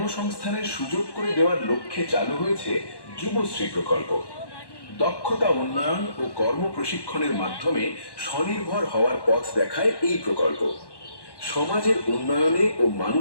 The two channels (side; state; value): right; late; 1.1 ms